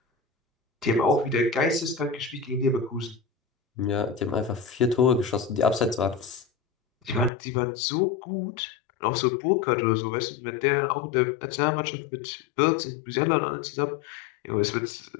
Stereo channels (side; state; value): right; drops out; at 7.3 s